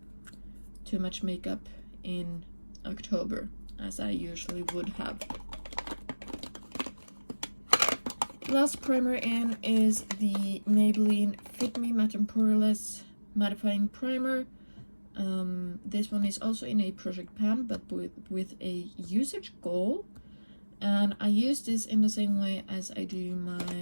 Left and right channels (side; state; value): both; inverted; correlation -1.00